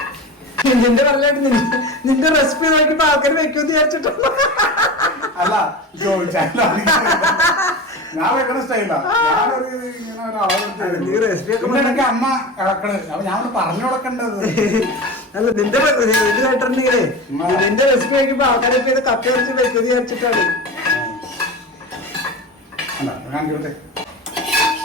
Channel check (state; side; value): normal; both; correlation 0.29